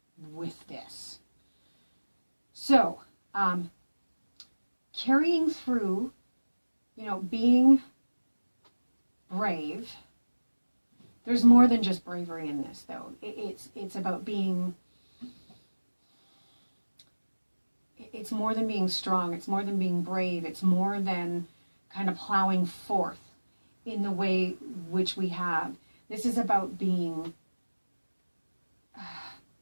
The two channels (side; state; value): both; inverted; correlation -1.00